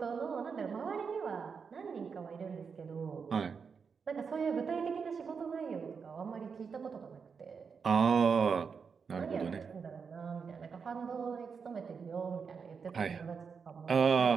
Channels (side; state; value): left; quieter; 5.8 dB